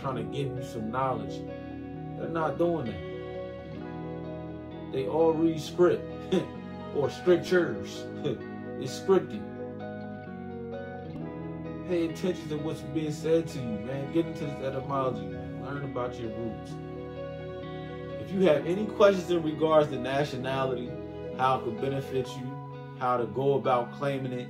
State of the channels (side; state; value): both; identical; correlation 1.00